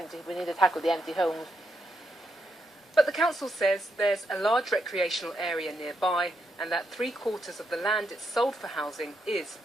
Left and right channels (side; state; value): both; normal; correlation 0.80